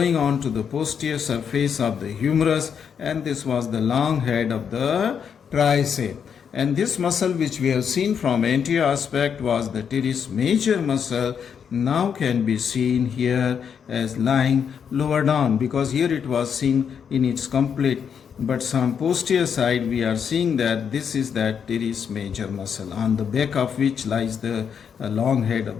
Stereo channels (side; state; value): right; quieter; 7.3 dB